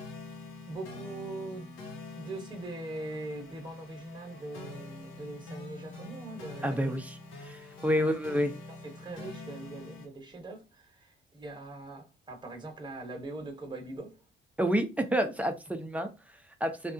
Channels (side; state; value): both; normal; correlation 0.77